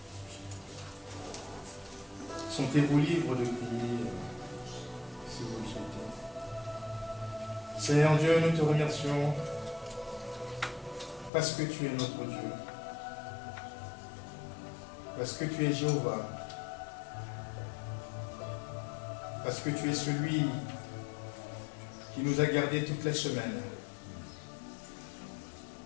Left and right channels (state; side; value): drops out; right; at 11.3 s